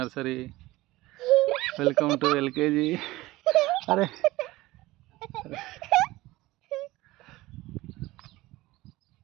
welcome to LKG. అరే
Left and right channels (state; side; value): quieter; left; 18.7 dB